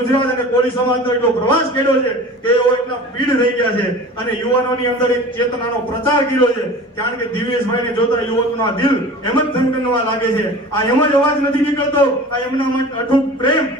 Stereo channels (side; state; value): both; normal; correlation 0.39